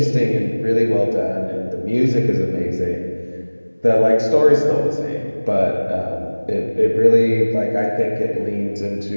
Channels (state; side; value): inverted; both; correlation -1.00